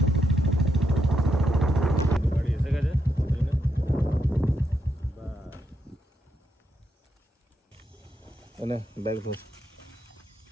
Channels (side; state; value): both; normal; correlation 0.81